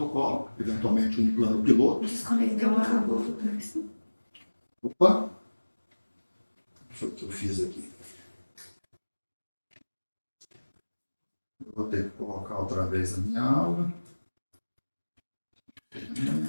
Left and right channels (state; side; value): inverted; both; correlation -1.00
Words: eventualmente um plano piloto. Opa! Deixa eu ver o que eu fiz aqui. Eu vou ter que colocar outra vez a minha aula.